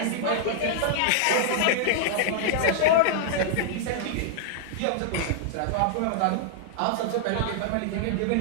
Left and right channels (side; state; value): both; different; correlation -0.01